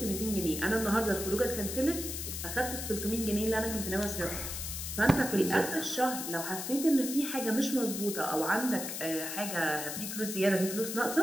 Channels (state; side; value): noise; left; hiss, 5 dB below the sound